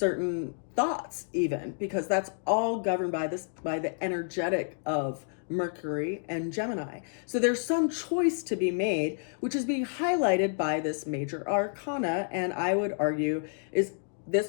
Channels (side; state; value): right; silent; digital silence